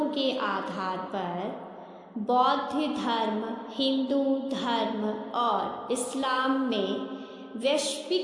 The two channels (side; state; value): both; identical; correlation 1.00